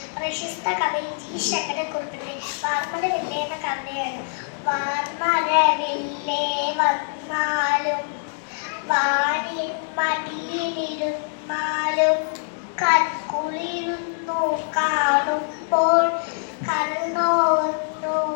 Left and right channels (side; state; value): right; silent; digital silence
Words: പ്രശസ്ത കവി ജി ശങ്കരക്കുറുപ്പിൻ്റെ വാർമഴവില്ലേ എന്ന കവിതയാണ്. വാർമഴവില്ലേ വന്നാലും വാനിൻ മടിയിലിരുന്നാലും കൺകുളിരുന്നു കാണുമ്പോൾ കണ്ണോന്നു